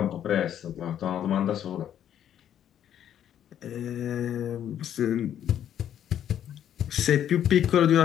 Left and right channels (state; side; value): quieter; right; 10.2 dB